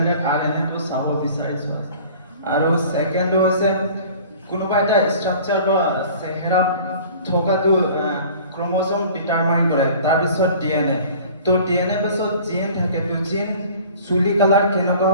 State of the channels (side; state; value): both; inverted; correlation -0.46